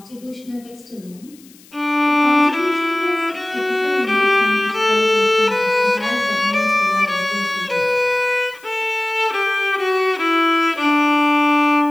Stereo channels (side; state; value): left; noise; hiss, 26 dB below the sound